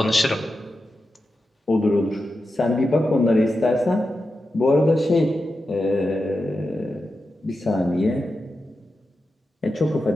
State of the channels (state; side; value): normal; both; correlation 0.90